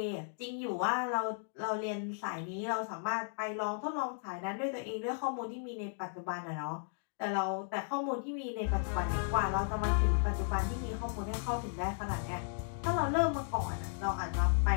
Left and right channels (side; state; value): right; silent; digital silence